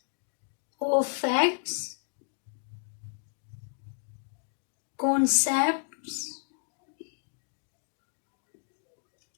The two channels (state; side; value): silent; right; digital silence